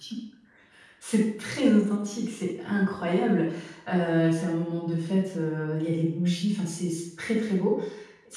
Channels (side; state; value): both; identical; correlation 1.00